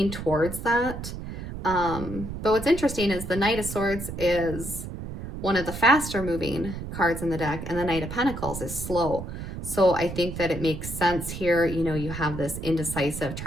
towards that. But what's interesting is the Knight of Swords is one of the faster moving cards in the deck, and the Knight of Pentacles is slow. So I think that it makes sense here. You know, you have this indecisive,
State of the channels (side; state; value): right; noise; rumble, 8 dB below the sound